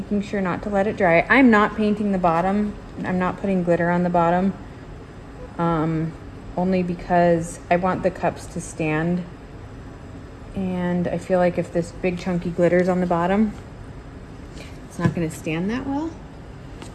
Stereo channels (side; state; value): both; identical; correlation 1.00